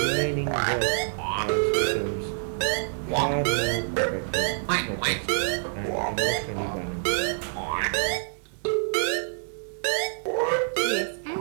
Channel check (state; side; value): silent; left; 60 dB below the other